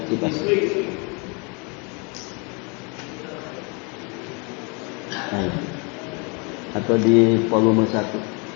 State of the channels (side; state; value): right; quieter; 32.2 dB